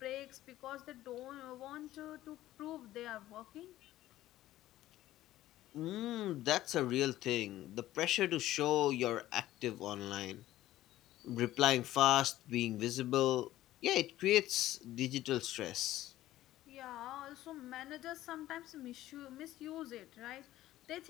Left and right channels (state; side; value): quieter; right; 14.7 dB